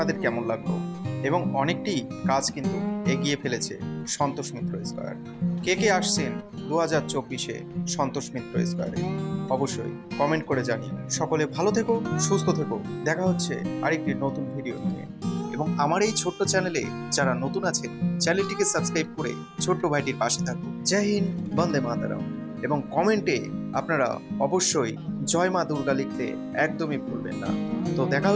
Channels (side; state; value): both; identical; correlation 1.00